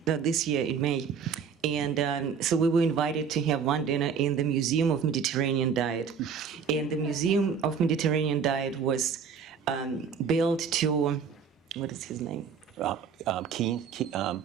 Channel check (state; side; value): quieter; left; 6.6 dB